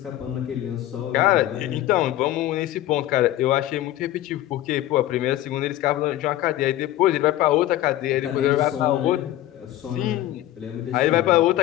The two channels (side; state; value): right; quieter; 14.3 dB